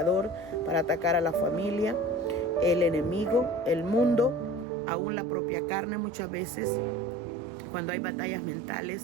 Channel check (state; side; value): drops out; left; at 4.7 s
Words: para atacar a la familia, el enemigo, el mundo, aún la propia carne muchas veces, cuando hay batallas